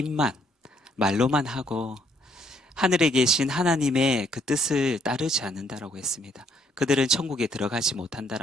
말로만 하고 하늘에 계신 하나님의 그 뜻을 따르지 않는다라고 했습니다. 그들은 천국에 들어가지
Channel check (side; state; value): both; normal; correlation 0.68